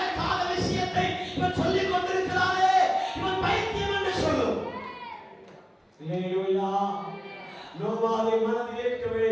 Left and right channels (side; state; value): both; identical; correlation 1.00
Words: விஷயத்தை இவன் சொல்லிக் கொண்டிருக்கிறானே, இவன் பைத்தியம் என்று சொல்லும். ஹல்லேலூயா. நோவாவை மனதில் ஏற்கவே